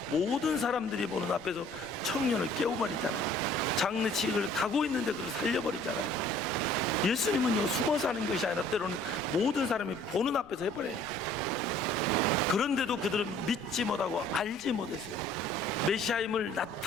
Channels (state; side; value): noise; left; rumble, 24 dB below the sound